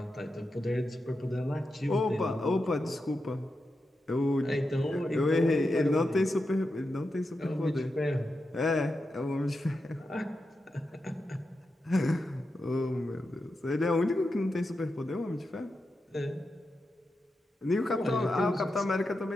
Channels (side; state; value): both; normal; correlation 0.88